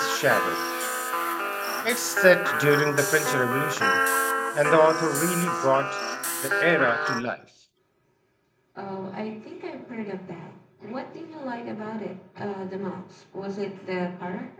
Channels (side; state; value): both; identical; correlation 1.00